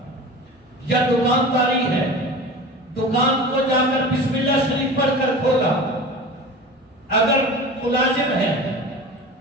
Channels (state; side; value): normal; both; correlation 0.35